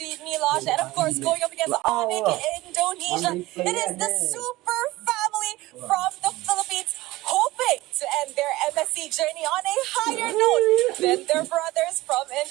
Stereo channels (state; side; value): quieter; left; 18.8 dB